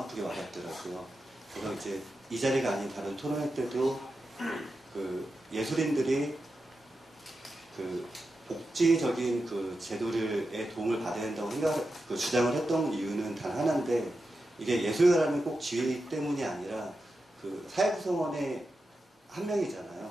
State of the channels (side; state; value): both; normal; correlation 0.90